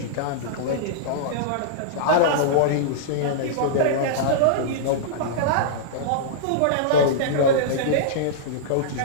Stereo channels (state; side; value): different; both; correlation -0.03